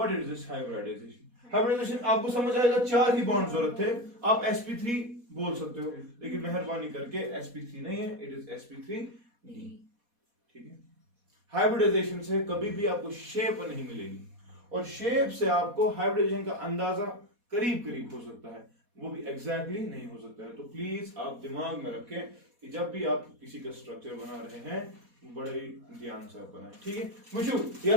is this hybridization? Hybridization आपको समझ आएगा 4 ही बॉन्ड जरूरत थे, आप sp3 बोल सकते हो, लेकिन मेहरबानी करके sp3 नहीं है, इट इज sp3d ठीक है। हाइब्रिडाइजेशन से कभी भी आपको शेप नहीं मिलेगी, और शेप से आपको हाइब्रिडाइजेशन का अंदाजा करीब करीब हो सकता है, वो भी एग्जैक्टली नहीं हो सकता है। तो प्लीज आप दिमाग में रखें कि जब भी आप किसी का स्ट्रक्चर बना रहे हैं बड़े ध्यान से आप बनाएं, ठीक है। मुझे या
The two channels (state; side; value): late; left; 4.2 ms